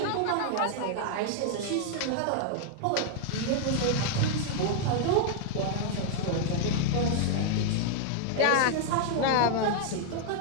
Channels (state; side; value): different; both; correlation 0.00